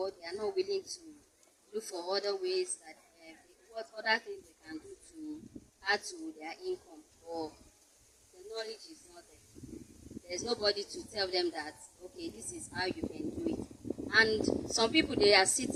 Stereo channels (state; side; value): identical; both; correlation 1.00